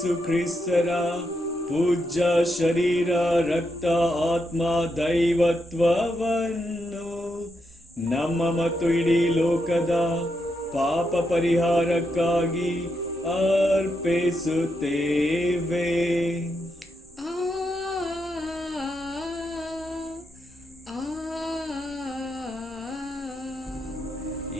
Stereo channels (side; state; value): both; normal; correlation 0.83